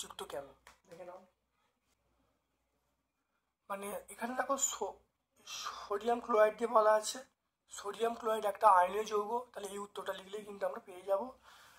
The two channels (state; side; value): identical; both; correlation 1.00